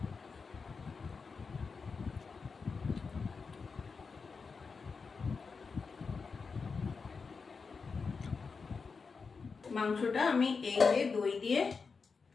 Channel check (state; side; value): quieter; right; 5.0 dB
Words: মাংসটা আমি এই যে দই দিয়ে